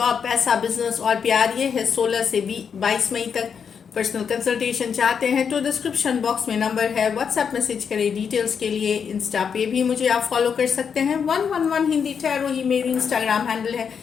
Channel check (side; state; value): right; quieter; 6.8 dB